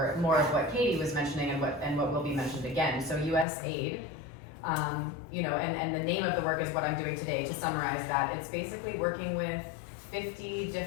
more of what Katie was mentioning and what will be mentioned again. So USAID, you know, and the name of the work is what I'm doing today. To summarize that, it's basically working with 50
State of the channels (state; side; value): drops out; right; at 3.5 s